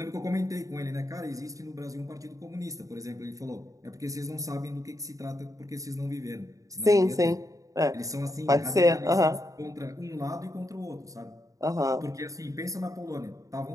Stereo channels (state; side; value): late; left; 0.16 ms